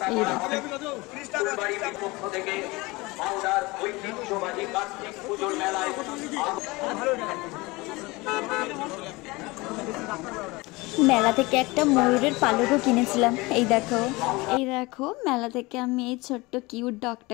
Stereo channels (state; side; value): quieter; right; 23.1 dB